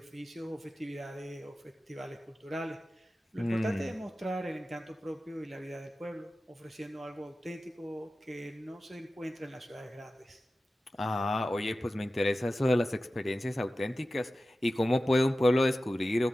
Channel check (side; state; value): both; normal; correlation 0.95